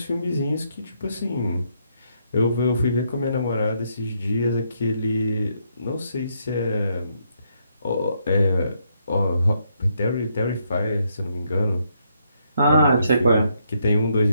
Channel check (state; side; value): inverted; both; correlation -0.75